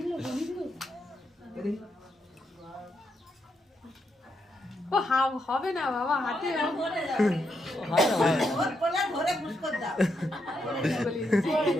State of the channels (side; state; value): both; normal; correlation 0.81